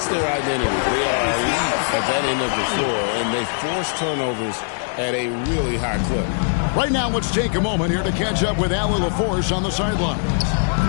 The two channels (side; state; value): right; silent; digital silence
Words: their identity. They are elite at that end of the floor, and they force turnovers at a really high clip. Right now, let's take a moment here to catch up with Allie LaForce on the sideline.